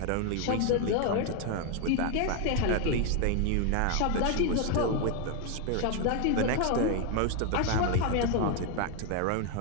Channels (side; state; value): both; different; correlation 0.01